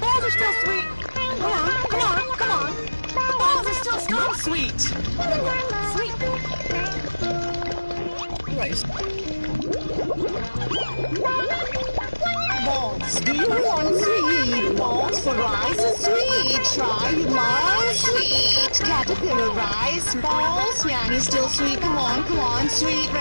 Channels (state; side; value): inverted; both; correlation -1.00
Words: are still sweet. Come on, come on, come on. The balls are still strong sweet. Sweet. Rice. Balls. Do you want sweet balls for rice is sweet? Try my sweet caterpillar rice balls. Yanny still sweet. Come on, come on. Sweet